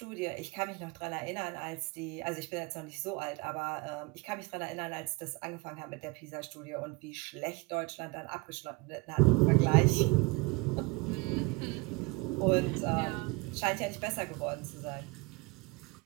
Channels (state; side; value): quieter; left; 25.9 dB